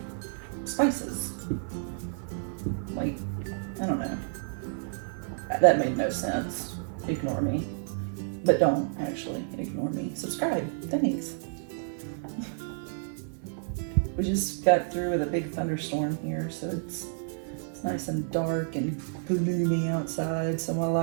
spices. Like, I don't know. That made no sense. Ignore me. But don't actually ignore me. Subscribe. Thanks. We just got through with a big thunderstorm here, so it's nice and dark and gloomy outside, so my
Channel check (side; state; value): left; silent; digital silence